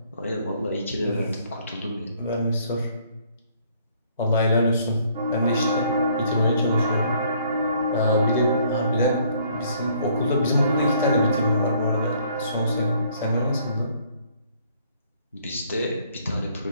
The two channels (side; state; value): both; inverted; correlation -0.63